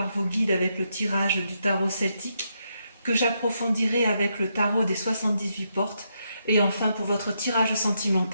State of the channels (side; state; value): both; inverted; correlation -0.80